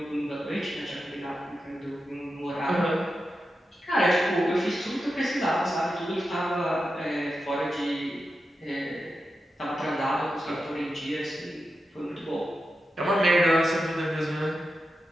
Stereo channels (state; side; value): normal; both; correlation 0.90